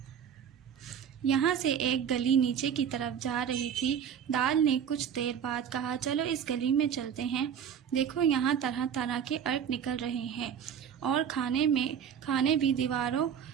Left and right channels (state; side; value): quieter; left; 8.2 dB